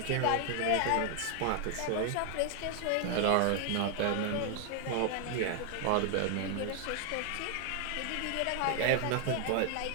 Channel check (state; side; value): different; both; correlation 0.00